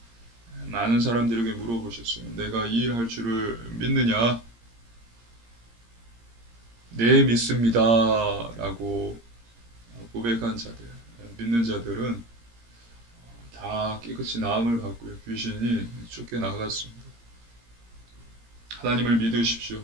많은 사람들에게 물어보셨어요. 내가 이 일 할 줄을 믿느냐? 네, 믿습니다. 라고 고백한 자들, 믿는 자들은 다 깨끗이 나음을 받고요. 귀신이 쫓겨나갔습니다. 하나님을 믿으십시오.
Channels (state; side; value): late; left; 17 ms